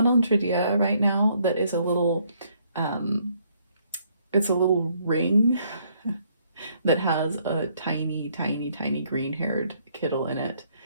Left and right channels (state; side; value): inverted; both; correlation -0.68